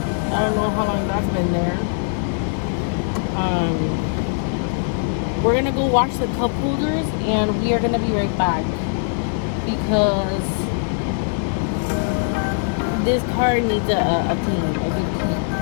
I don't know how long that's been there. We're gonna go wash the cup holders and we are gonna be right back because this car needs a clean, a good clean.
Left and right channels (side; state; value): right; silent; 65 dB below the other